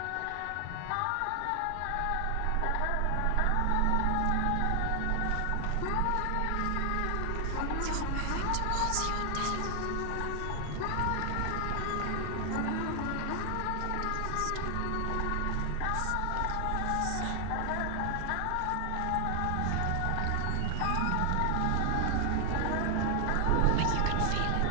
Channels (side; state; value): both; different; correlation 0.00